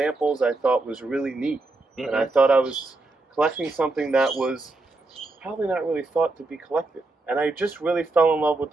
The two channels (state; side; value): quieter; left; 3.2 dB